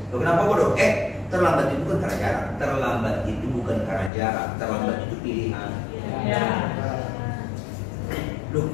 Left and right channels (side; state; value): right; drops out; at 4.1 s